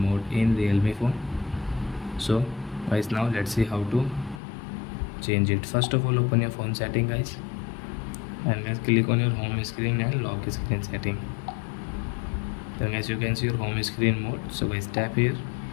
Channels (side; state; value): right; drops out; at 4.4 s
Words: in Realme phone. So guys, now let's see how to change it. First of all, open your phone setting guys, and let's click on your home screen and lock screen setting. Then as you can see your home screen mode, so guys tap here,